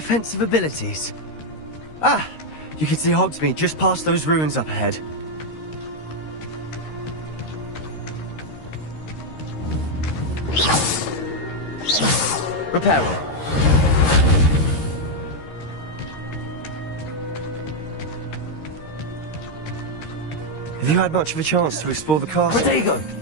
abilities. Ah, you can see Hogsmeade just past those ruins up ahead. Reparo. Have you had much of a chance to explore the castle? Rodrigo!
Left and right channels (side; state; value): right; late; 13 ms